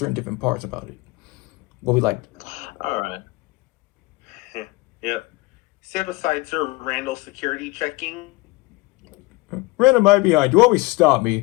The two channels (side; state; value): right; quieter; 22.5 dB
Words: different parts about it, what we liked. All right. Yep. Set aside Sir Randall security checking. Random, right behind you. Always stop